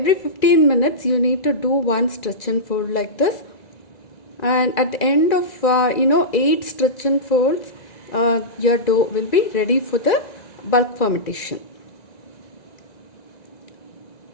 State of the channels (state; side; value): late; right; 1.9 ms